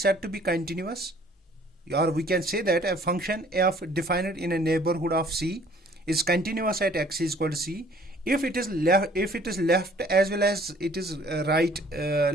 said to be continuous, or we can say that a function f defined in a neighborhood of C is continuous at x is equal to C if it is left as well as it is right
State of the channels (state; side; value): normal; both; correlation 0.57